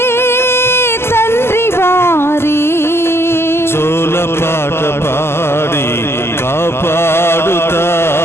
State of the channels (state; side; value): late; right; 0.12 ms